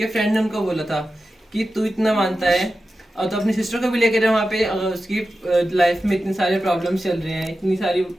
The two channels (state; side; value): normal; both; correlation 0.92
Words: फ्रेंड ने उनको बोला था कि तू इतना मानता है और तो अपनी सिस्टर को भी लेकर जा वहाँ पे, उसकी लाइफ में इतने सारे प्रॉब्लम्स चल रहे हैं, इतनी सारी